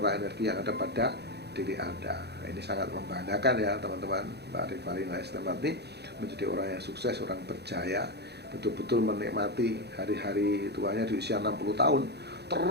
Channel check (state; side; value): late; left; 0.48 ms